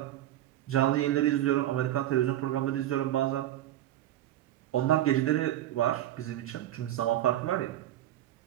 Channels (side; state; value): left; quieter; 13.1 dB